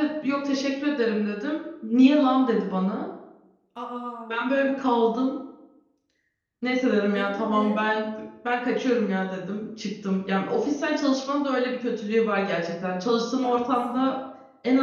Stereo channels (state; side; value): identical; both; correlation 1.00